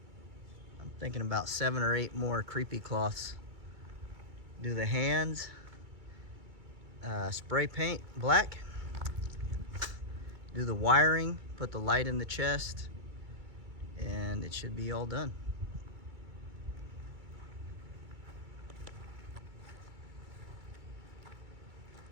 I'm thinking about 7 or 8 more creepy cloths. Do the hands, spray paint black, do the wiring, put the light in the chest, and it should be all done.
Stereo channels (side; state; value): left; late; 2.3 ms